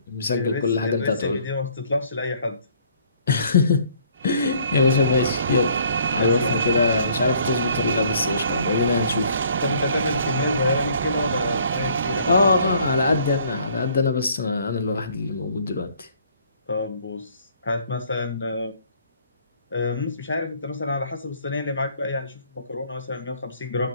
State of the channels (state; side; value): inverted; both; correlation -0.60